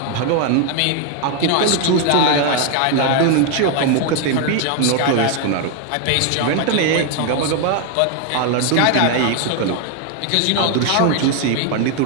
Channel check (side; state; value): both; different; correlation 0.01